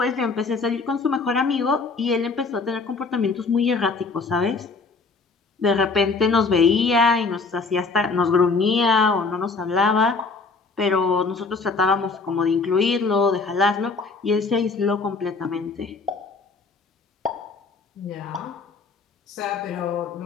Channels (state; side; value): quieter; right; 4.2 dB